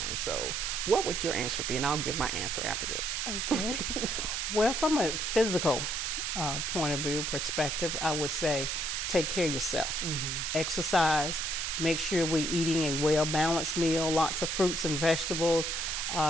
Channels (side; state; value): right; noise; hiss, 1 dB below the sound